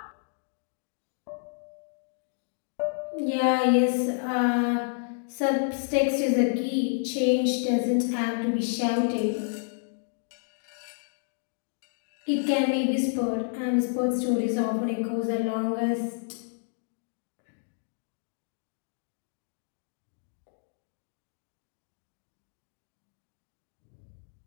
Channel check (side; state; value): right; silent; digital silence